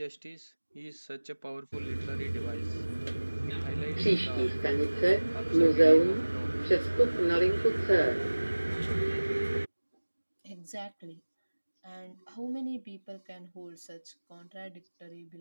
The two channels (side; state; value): both; inverted; correlation -1.00